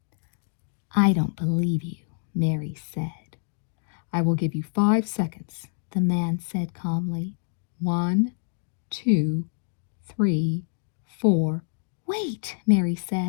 "I don't believe you," Mary said. "I will give you 5 seconds," the man said calmly. 1, 2, 3, 4. "Wait," Mary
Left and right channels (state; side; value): silent; right; digital silence